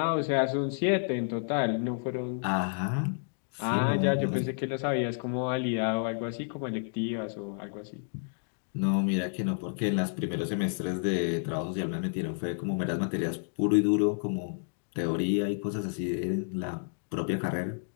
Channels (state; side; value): silent; right; digital silence